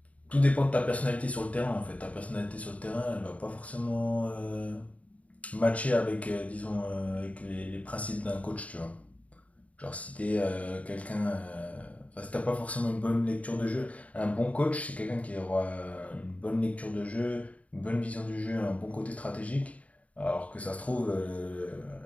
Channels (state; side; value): late; right; 0.067 ms